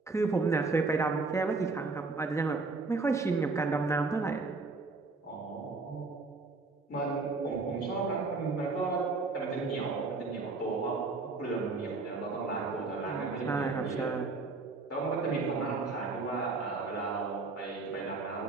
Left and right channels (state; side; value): quieter; left; 3.9 dB